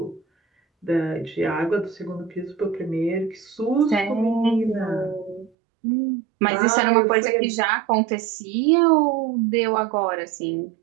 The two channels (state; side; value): drops out; left; at 5.5 s